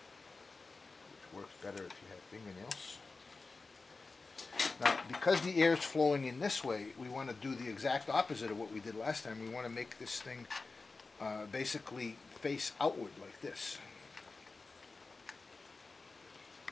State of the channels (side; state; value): right; quieter; 3.9 dB